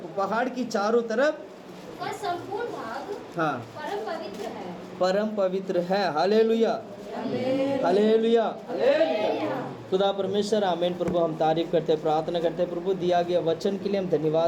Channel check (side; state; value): both; identical; correlation 1.00